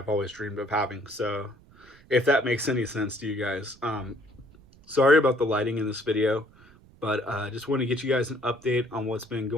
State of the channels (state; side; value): noise; right; rumble, 26 dB below the sound